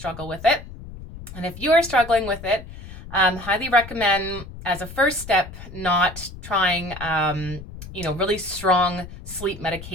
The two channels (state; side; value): noise; left; rumble, 14 dB below the sound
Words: with it. And if you are struggling with it, highly recommend as a first step not trying really strong sleep